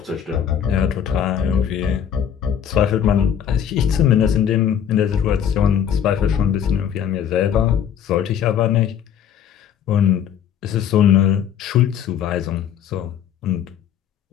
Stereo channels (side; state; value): right; quieter; 9.0 dB